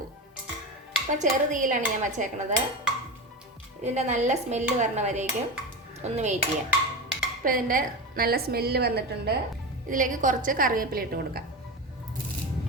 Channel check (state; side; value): normal; both; correlation 0.22